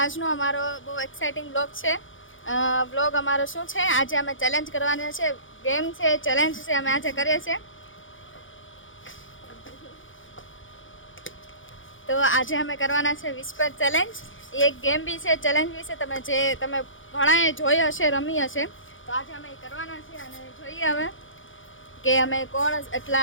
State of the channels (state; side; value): late; right; 0.57 ms